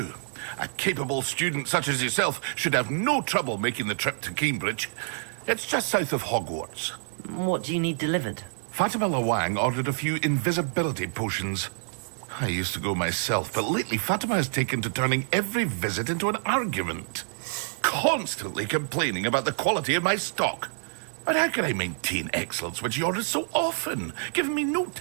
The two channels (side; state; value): left; silent; 59 dB below the other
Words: A capable student such as yourself should have no trouble making the trip to Cambridge. It's just south of Hogwarts. What do you need delivered? Fatima Lawang ordered a few invisibility potions. I used to go myself, but lately Fatima has taken to turning every visit into an argument. Constantly complaining about the quality of my stock. But how can I maintain excellence when she orders so often, giving me no